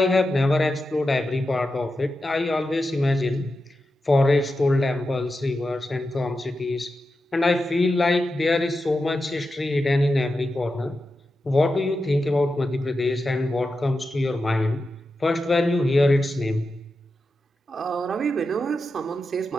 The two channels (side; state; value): both; normal; correlation 0.90